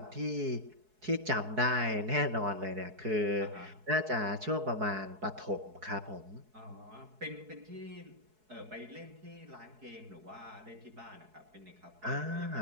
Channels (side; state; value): left; late; 4.7 ms